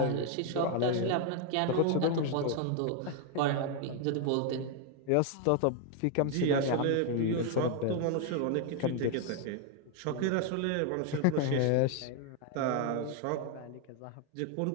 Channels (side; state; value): both; different; correlation 0.01